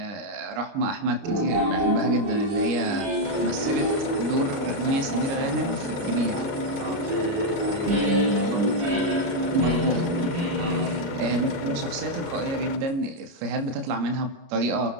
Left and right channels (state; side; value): late; left; 29 ms